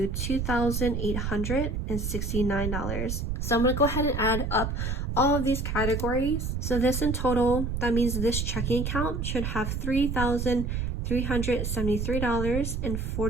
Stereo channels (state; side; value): noise; right; rumble, 2 dB below the sound